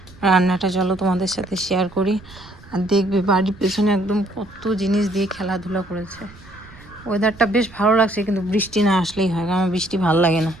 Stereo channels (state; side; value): noise; right; rumble, 22 dB below the sound